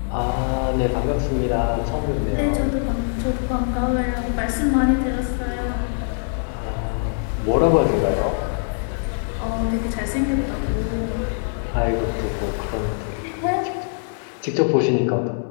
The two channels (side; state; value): right; silent; 64 dB below the other